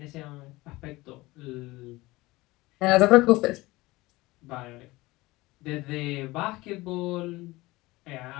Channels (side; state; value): right; quieter; 20.4 dB